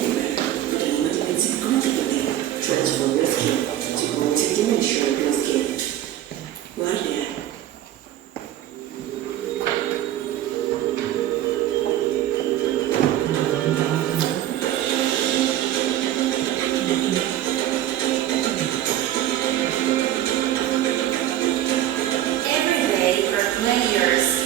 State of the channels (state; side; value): quieter; left; 12.5 dB